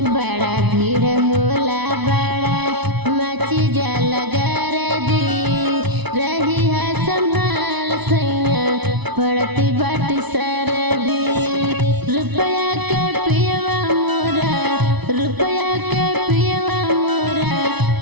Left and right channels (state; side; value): late; left; 0.99 ms